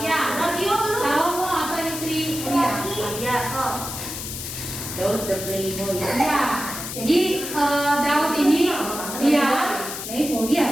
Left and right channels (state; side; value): noise; left; hiss, 7 dB below the sound